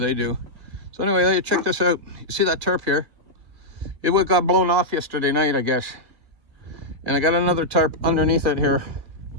they do. So anyway, let you check this out. You see that tarp here? It got blown off yesterday night, I guess. And I got another tarp underneath it here,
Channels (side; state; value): left; late; 2.0 ms